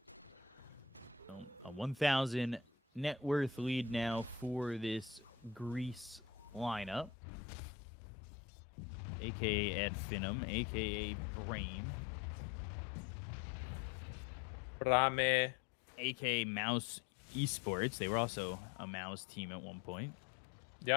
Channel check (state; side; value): drops out; right; at 7.1 s